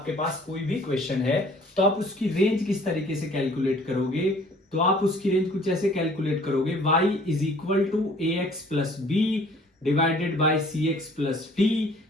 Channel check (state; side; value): normal; both; correlation 0.55